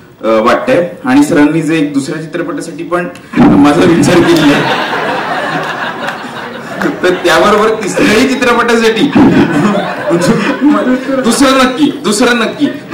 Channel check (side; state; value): both; identical; correlation 1.00